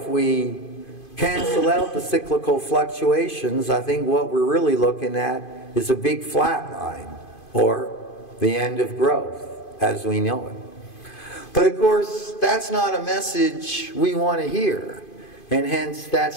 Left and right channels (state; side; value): late; right; 2.5 ms